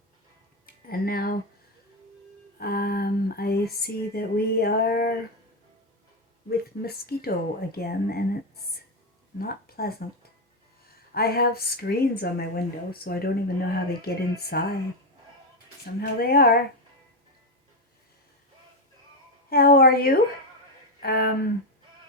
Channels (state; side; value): normal; both; correlation 0.08